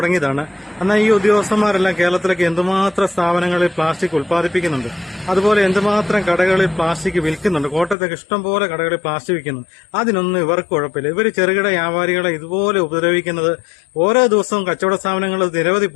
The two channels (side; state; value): right; drops out; at 8.0 s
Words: എന്നാൽ ഈ ഉദ്യോഗസ്ഥന്മാരെല്ലാം കേരളത്തിലേക്ക് എന്തുമാത്രം സ്ഥാപനങ്ങളിൽ പ്ലാസ്റ്റിക് ഉൽപ്പാദിപ്പിക്കുന്നുണ്ട്, അതുപോലെ എന്തുമാത്രം കടകളിൽ പ്ലാസ്റ്റിക് വിൽക്കുന്നുണ്ട്. കോട്ടയത്തൊക്കെ ഇഷ്ടംപോലെ കടകളിൽ പ്ലാസ്റ്റിക് വിൽക്കുന്നുണ്ട്. അതിനൊന്നും ഇവർക്ക് കുഴപ്പമില്ല. ഇവർ ചെറുകിട വ്യാപാരികളെ ഇതുപോലെ ഉപദ്രവിക്കുന്നത് ഓരോ ദിവസവും കച്ചവട സ്ഥാപനങ്ങൾ നിരവധി